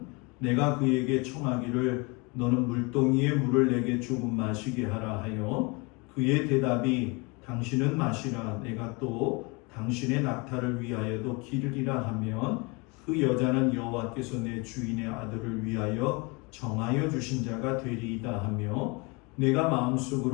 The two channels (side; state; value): right; quieter; 28.6 dB